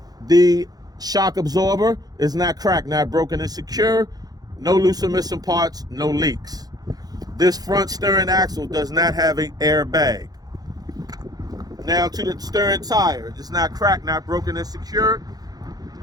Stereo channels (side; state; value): left; late; 0.19 ms